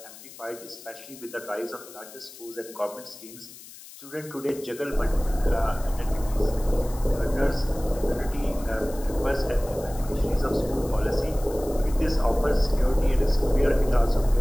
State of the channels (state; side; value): noise; left; hiss, 17 dB below the sound